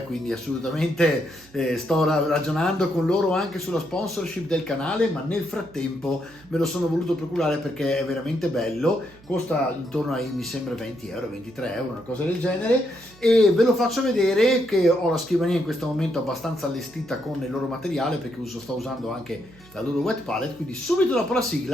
quindi assolutamente sto ragionando con loro anche sulla sponsorship del canale, ma nel frattempo me lo sono voluto procurare perché è veramente bello. Costa intorno ai, mi sembra, 20 euro, 23 euro, una cosa del genere, e ve lo faccio vedere che ho la scrivania in questo momento abbastanza allestita con il loro materiale, perché sto usando anche la loro wet palette. Quindi subito dopo la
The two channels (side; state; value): right; noise; hum, 25 dB below the sound